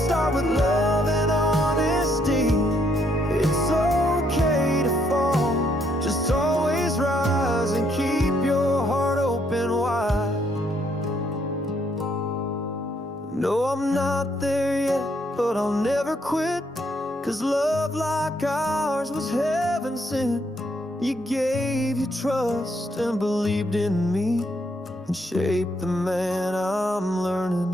with love and honesty. It's okay to fall, just always rise and keep your heart open wide. No, I'm not there yet, but I'll never quit, 'cause love like ours was heaven sent. You gave your trust and believed in me, and shaped the man I'm learning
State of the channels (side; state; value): both; normal; correlation 0.72